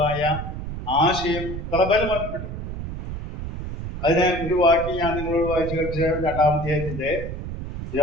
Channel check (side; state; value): right; noise; rumble, 7 dB below the sound